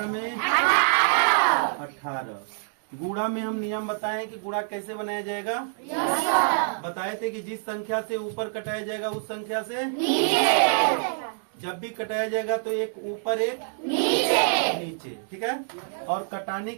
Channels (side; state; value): left; silent; digital silence